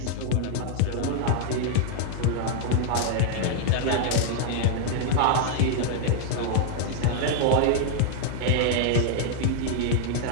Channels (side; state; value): both; different; correlation 0.00